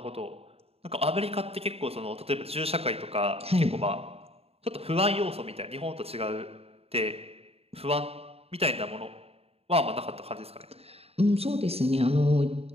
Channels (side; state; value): left; late; 0.29 ms